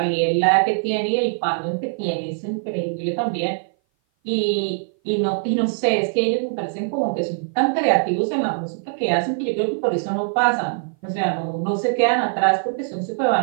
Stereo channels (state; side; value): silent; left; 57 dB below the other